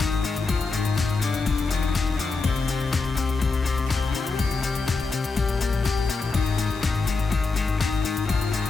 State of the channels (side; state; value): right; quieter; 4.0 dB